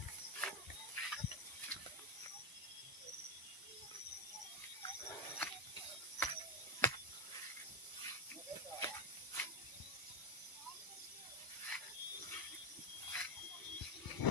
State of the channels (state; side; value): late; right; 1.0 ms